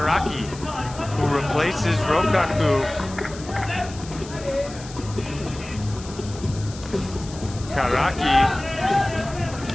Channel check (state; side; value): noise; left; hiss, 16 dB below the sound